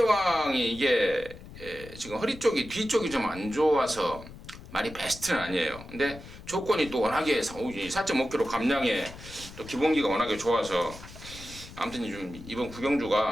이게 지금 허리 쪽이 뒤쪽이 좀 안 좋아서 많이 베스트는 아니에요. 근데 조건이 또 워낙에 4.5kg 감량에 또 기본기가 워낙에 좋아서 아무튼 좀 이번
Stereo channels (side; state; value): left; noise; rumble, 16 dB below the sound